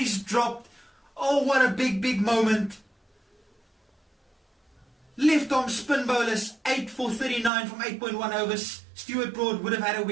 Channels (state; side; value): drops out; left; at 7.5 s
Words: dropped. Oh, what a big moment. Left arm spin bowlers, 8 for 39 from 8.1 overs. Stuart Broad would have had a